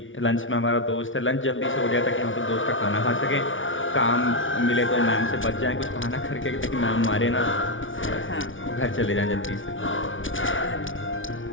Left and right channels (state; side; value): late; right; 0.57 ms